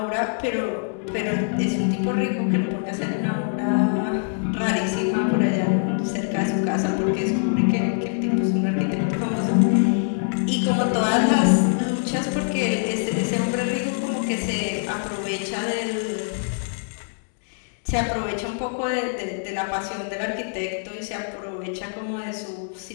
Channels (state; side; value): silent; right; digital silence